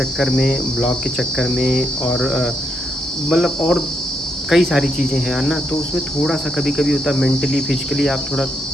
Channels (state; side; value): normal; both; correlation 0.79